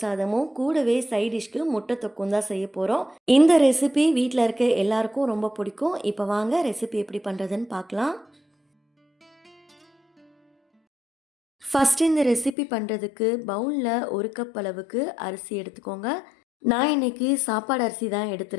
சாதமும் கூடவே சைட் டிஷ்க்கு முட்டை தொக்கும் தான் செய்ய போகிறோம். இந்த ரெசிபி வீட்டில் இருக்க எல்லாருக்கும் ரொம்ப பிடிக்கும். இப்போ வாங்க ரெசிபி எப்படி பண்ணுறதுன்னு பார்க்கலாம். ஃபஸ்ட்டு இந்த ரெசிபி பண்ணுறதுக்கு பவுலில் 1 கப் அளவுக்கு அரிசி எடுத்துக்கோங்க. நான் இன்றைக்கி சாப்பாடு அரிசி தான்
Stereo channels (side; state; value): right; drops out; at 12.6 s